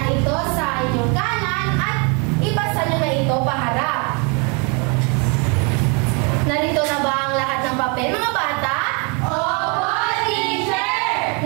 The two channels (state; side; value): quieter; left; 33.3 dB